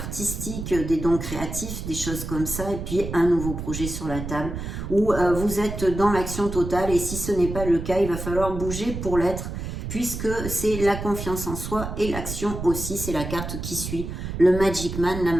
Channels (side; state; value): right; noise; rumble, 6 dB below the sound